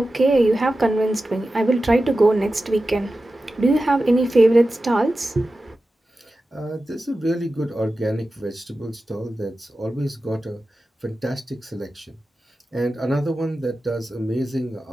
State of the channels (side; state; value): both; normal; correlation 0.93